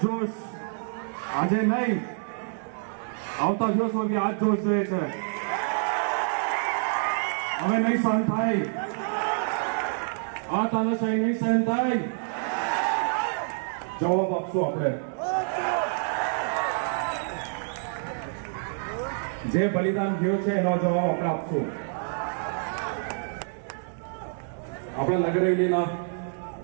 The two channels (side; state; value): left; silent; digital silence